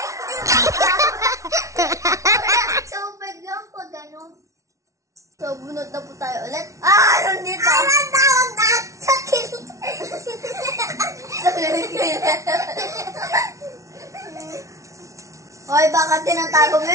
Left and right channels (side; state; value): left; late; 0.15 ms